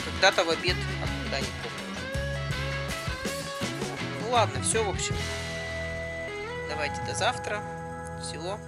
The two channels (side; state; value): both; identical; correlation 1.00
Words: когда-то в обед, а когда не помню уже. Ну ладно, все, в общем. Давайте до завтра. Всего